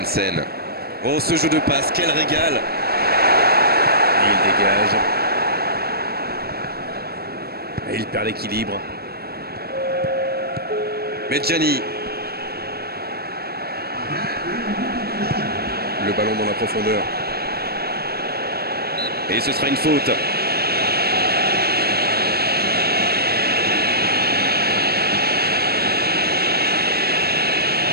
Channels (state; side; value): late; left; 0.46 ms